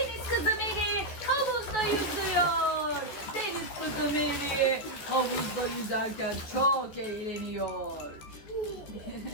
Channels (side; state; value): right; late; 14 ms